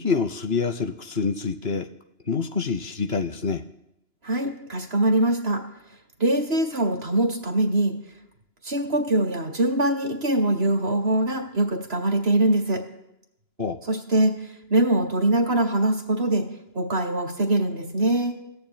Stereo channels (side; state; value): left; late; 2.9 ms